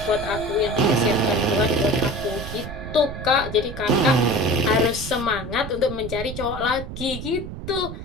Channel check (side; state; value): right; noise; rumble, 9 dB below the sound